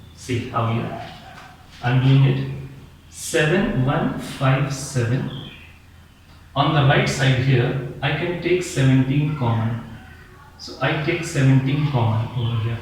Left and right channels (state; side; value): identical; both; correlation 1.00